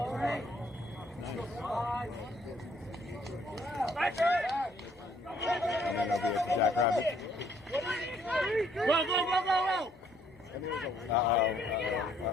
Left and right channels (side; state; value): both; normal; correlation 0.65